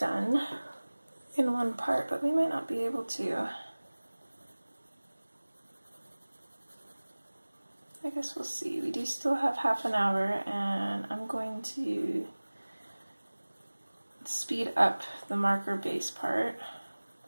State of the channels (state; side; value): inverted; both; correlation -1.00